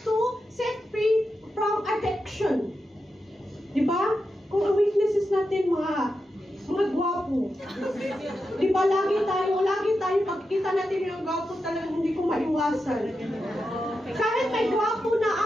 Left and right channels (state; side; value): normal; both; correlation 0.88